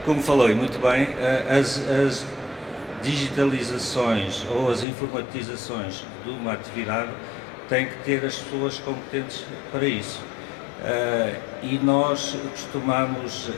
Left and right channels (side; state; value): right; drops out; at 4.9 s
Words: como falou e muito bem, as digitalizações ou as informatizações de uma atividade têm que ter as pessoas competentes para isso. E nós costumamos,